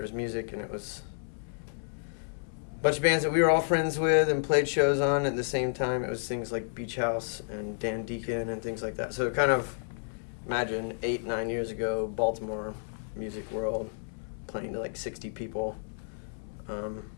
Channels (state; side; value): silent; right; 57 dB below the other